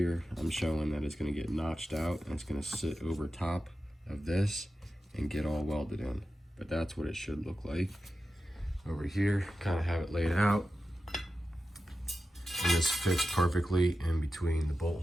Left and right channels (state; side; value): normal; both; correlation 0.92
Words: I'm showing that it's gonna get notched out, and it's gonna sit over top of this and get all welded in. But that's what it should look like. Over here, kind of have it laid out, and this fits perfectly in between the bolt